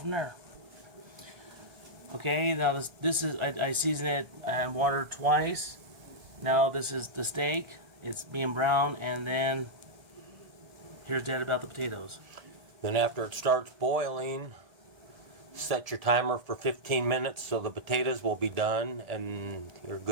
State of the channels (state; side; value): late; left; 1.4 ms